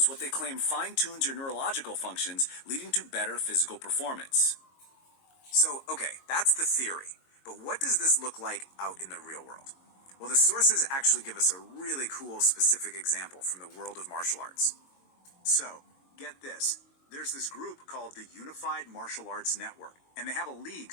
what they claim fine-tunes your neurological functions, leading to better physical performance. So, okay, that's the theory. But what does this look like out in the real world? Well, the sources actually give us a really cool specific example from the world of martial arts. So, get this. There's this group called the Unified Martial Arts Network, and they have a league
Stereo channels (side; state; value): right; late; 22 ms